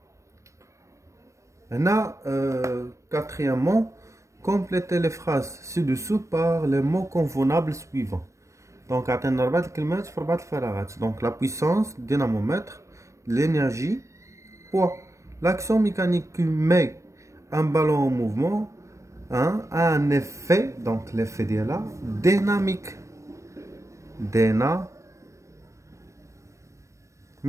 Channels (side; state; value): left; late; 0.15 ms